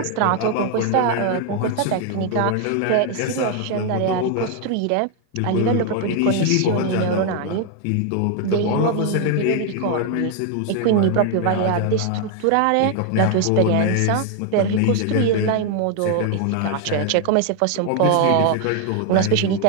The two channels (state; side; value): different; both; correlation 0.00